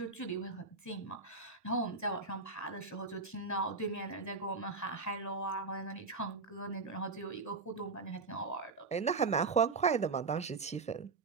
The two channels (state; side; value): quieter; left; 4.2 dB